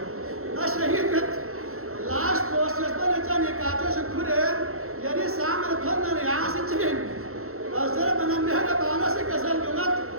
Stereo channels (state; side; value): late; left; 0.63 ms